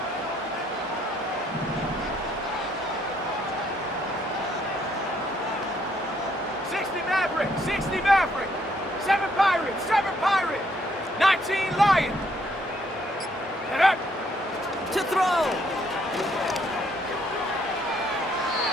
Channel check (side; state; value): both; normal; correlation 0.69